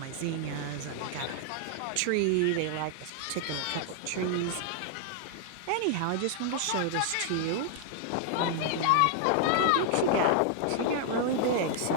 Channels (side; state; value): both; different; correlation 0.00